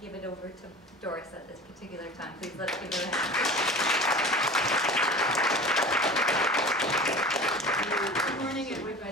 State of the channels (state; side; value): normal; both; correlation 0.37